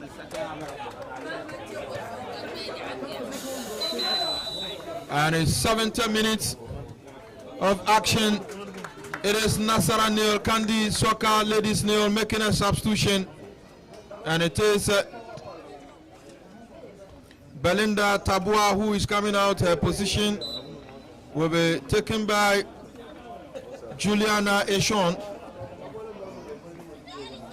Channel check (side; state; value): both; identical; correlation 1.00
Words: And it's 70 minutes of action. It is Nasara nil, Kandi Soccer Ladies nil, making a substitution. And it is Belinda Tabua who is coming out. Her position will be taken by Juliana Eshon.